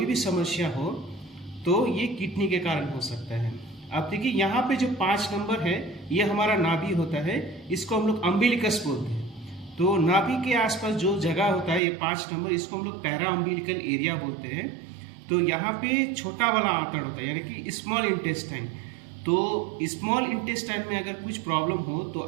भी समस्या हो, तो ये किडनी के कारण हो सकता है। अब देखिए यहाँ पे जो 5 नंबर है ये हमारा नाभि होता है, इसको हम लोग अम्बिलिकस बोलते हैं। तो नाभि के आसपास जो जगह होता है ये 5 नंबर, इसको हम लोग पैरा अम्बिलिकल एरिया बोलते हैं। तो यहाँ पे छोटा वाला आंतड़ होता है, यानी कि स्मॉल इंटेस्टाइन। तो स्मॉल इंटेस्टाइन में अगर कुछ प्रॉब्लम हो तो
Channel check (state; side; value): drops out; left; at 11.8 s